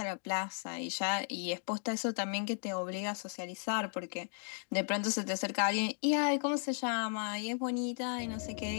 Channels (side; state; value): right; silent; 54 dB below the other